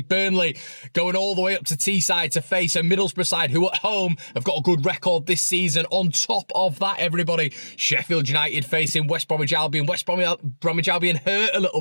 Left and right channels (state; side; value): inverted; both; correlation -1.00